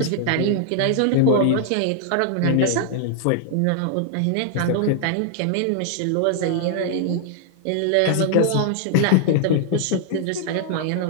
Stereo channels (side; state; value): both; different; correlation 0.00